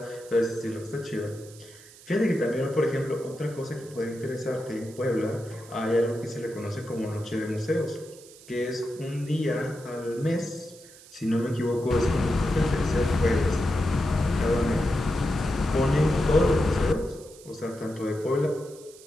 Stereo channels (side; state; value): right; noise; hiss, 21 dB below the sound